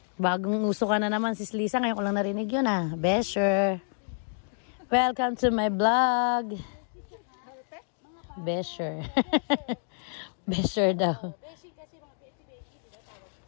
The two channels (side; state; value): right; silent; digital silence